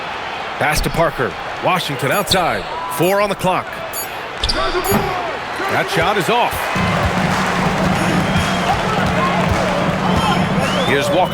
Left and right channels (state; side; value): identical; both; correlation 1.00